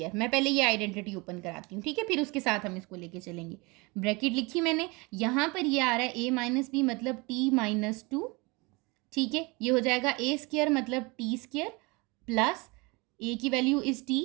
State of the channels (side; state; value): left; quieter; 26.5 dB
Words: मैं पहले ये आइडेंटिटी ओपन कराती हूँ, ठीक है, फिर उसके साथ हम इसको लेके चलेंगे। ब्रैकेट लिखी मैंने, यहाँ पर ये आ रहा है ए माइनस बी मतलब t-2, ठीक है। ये हो जाएगा ए स्क्वायर मतलब टी स्क्वायर प्लस ए की वैल्यू इज टी,